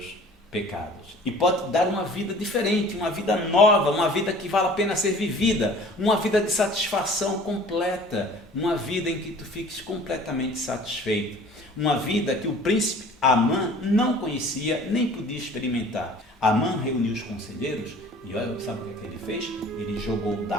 pecados. E pode te dar uma vida diferente, uma vida nova, uma vida que vale a pena ser vivida, uma vida de satisfação completa, uma vida em que tu fiques completamente satisfeito. Uma vida que o príncipe Amã não conhecia nem podia experimentar. Amã reuniu os conselheiros e olha, sabe o que ele fez? Ele jogou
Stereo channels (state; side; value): normal; both; correlation 0.48